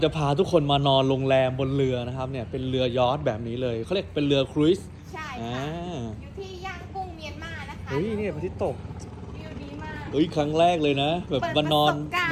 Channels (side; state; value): both; identical; correlation 1.00